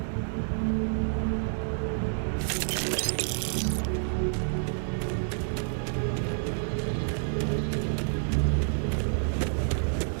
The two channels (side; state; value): left; silent; digital silence